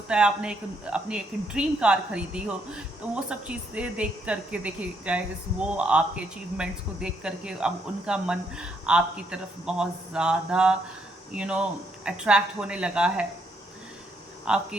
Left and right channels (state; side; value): normal; both; correlation 0.74